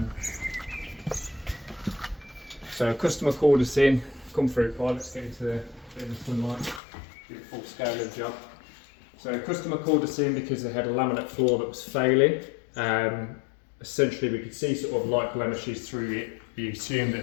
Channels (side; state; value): right; drops out; at 6.8 s